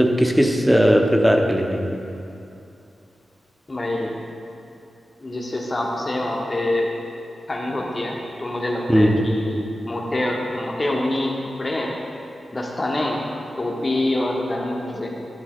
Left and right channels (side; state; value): both; normal; correlation 0.95